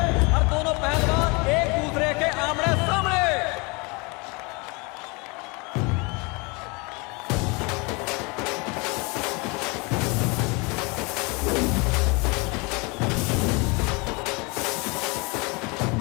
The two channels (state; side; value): quieter; right; 28.7 dB